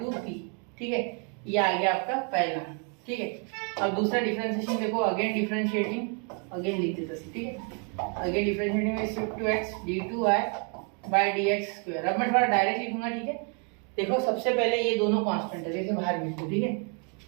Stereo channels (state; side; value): quieter; left; 38.3 dB